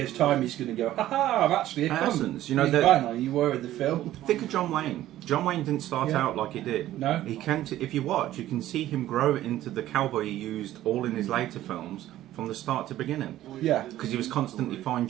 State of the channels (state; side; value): quieter; left; 13.9 dB